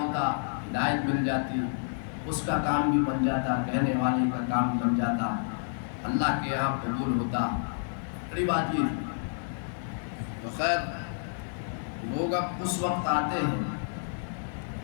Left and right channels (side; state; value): right; silent; 58 dB below the other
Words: ہدایت مل جاتی، اس کا کام بھی بن جاتا، کہنے والے کا کام بن جاتا، اللہ کے یہاں قبول ہوتا. بڑی بات یہ تھی. تو خیر، لوگ اب اس وقت آتے ہیں،